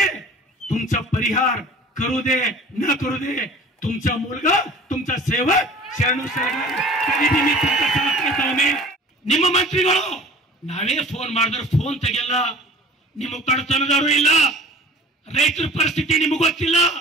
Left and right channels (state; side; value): normal; both; correlation 0.44